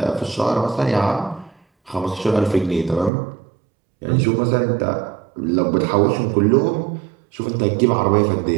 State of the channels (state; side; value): drops out; left; at 3.1 s